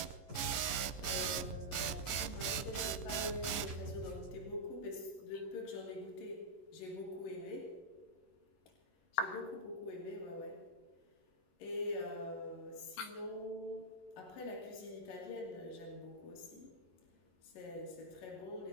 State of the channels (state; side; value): late; right; 11 ms